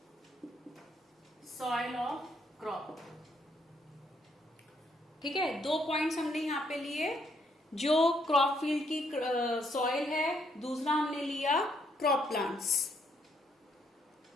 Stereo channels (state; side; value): normal; both; correlation 0.72